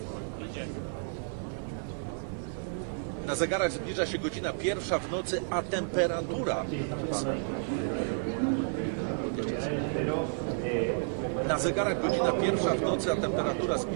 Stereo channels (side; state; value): left; silent; digital silence